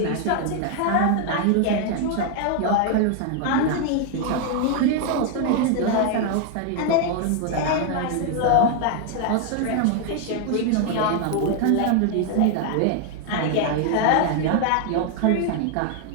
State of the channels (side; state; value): both; different; correlation 0.00